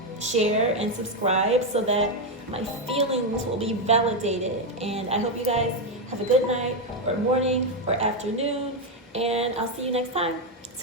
share, and subscribe so that my feelings will be validated. And I hope you guys have a good night or morning or afternoon. And I'll see you next time.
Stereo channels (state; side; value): normal; both; correlation 0.05